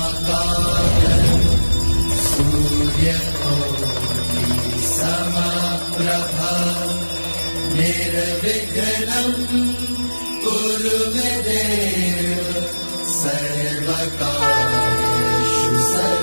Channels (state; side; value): inverted; both; correlation -1.00